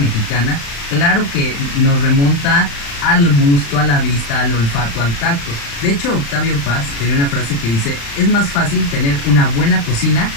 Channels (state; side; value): late; right; 35 ms